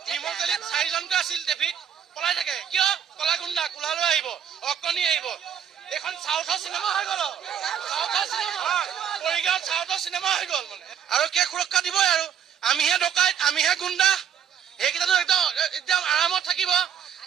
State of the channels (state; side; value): quieter; left; 8.6 dB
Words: নিৰ্মলচালিত 4জনকে আছিল ট্ৰেফিক পলাই থাকে কিয় কলা গুণ্ডা কোলালৈ আহিব অকণি আহিব এখন চাউথৰ চিনেমা হৈ গ'ল মৰিগাঁৱত চাউথৰ চিনেমা হৈ গ'ল মানে আৰু কে সুৰক্ষা দিবই আৰু আমিহে ডকাইত আমিহে গুণ্ডা সেইকেইটাতো একদম আৰামত থাকিব